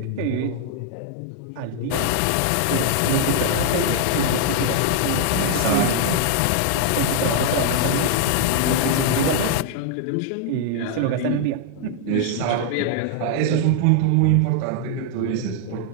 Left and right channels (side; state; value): both; different; correlation 0.00